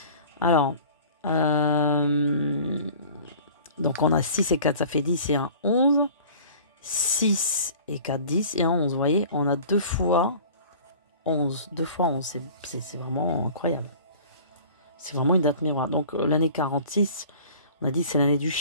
Alors, donc on a 6 et 4, ça fait 10 et 1, 11. 6 et 4, 10 et 1, 11. Vous voyez, on a 2 fois 11. 2 fois 11, c'est vraiment incroyable. C'est vraiment une date miroir. Donc l'année 46, on a dit c'est l'année du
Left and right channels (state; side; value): inverted; both; correlation -0.44